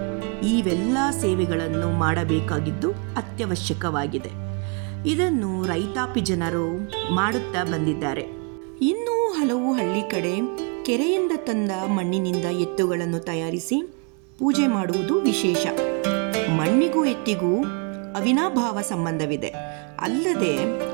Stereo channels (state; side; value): quieter; left; 32.2 dB